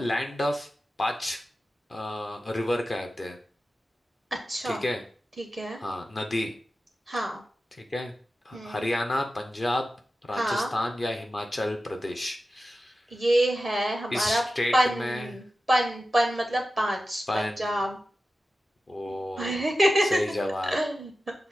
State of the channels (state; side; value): normal; both; correlation 0.93